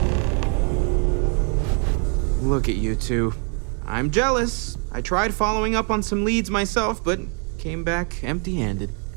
Look at you two. I'm jealous. I tried following up on some leads myself, but came back empty-handed.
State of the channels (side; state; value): left; quieter; 39.3 dB